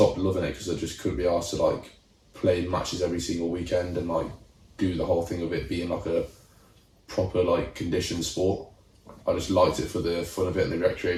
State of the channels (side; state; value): both; identical; correlation 1.00